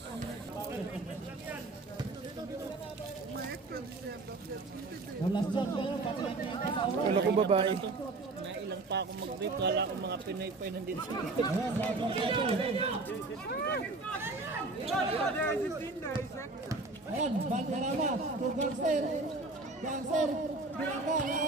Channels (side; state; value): left; quieter; 3.4 dB